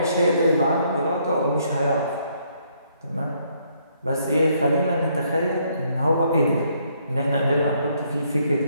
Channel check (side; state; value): both; inverted; correlation -0.70